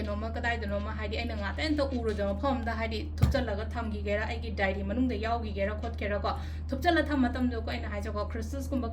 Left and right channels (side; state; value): both; identical; correlation 1.00